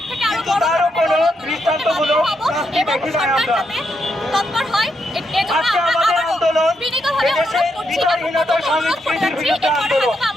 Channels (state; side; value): normal; both; correlation 0.80